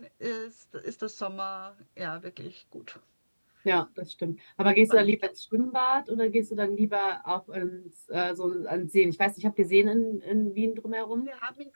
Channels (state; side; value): inverted; both; correlation -1.00